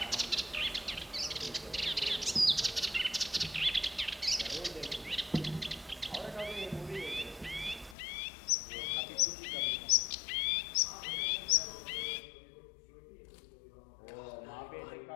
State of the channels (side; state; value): right; drops out; at 8.0 s